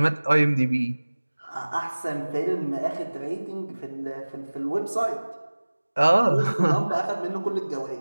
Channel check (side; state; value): both; inverted; correlation -1.00